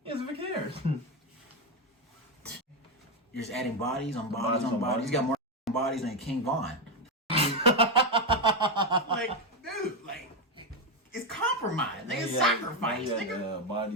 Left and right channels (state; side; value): normal; both; correlation 0.08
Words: doesn't even care. You're just adding bodies on bodies on bodies. You got more bodies than King Von. Dude, it's compromise. It's sacrifice. Nigga, body